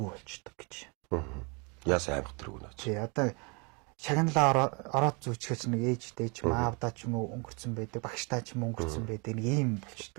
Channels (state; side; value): quieter; left; 31.5 dB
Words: болчдөг гэж. Яас аймаг тэрг үнэ. Тий одоо шагналаа ороод зүүчгэж нэг ээжтэй ч маавдаа ч юм уу өнгөрцөн байдаг, багштай ч юм өнгөрцөн байдаг нэг ийм